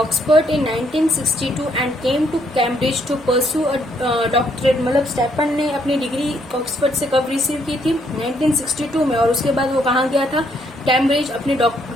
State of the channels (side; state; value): both; normal; correlation 0.71